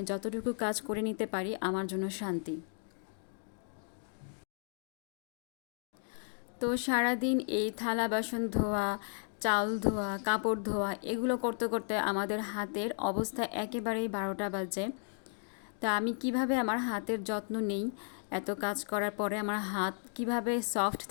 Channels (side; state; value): right; silent; 55 dB below the other